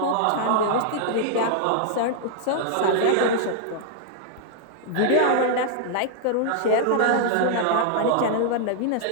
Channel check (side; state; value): both; different; correlation -0.01